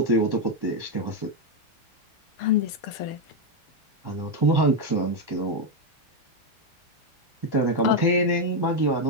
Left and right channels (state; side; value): normal; both; correlation 0.04